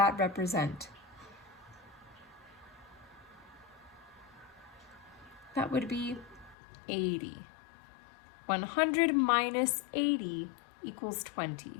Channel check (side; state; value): right; drops out; at 6.6 s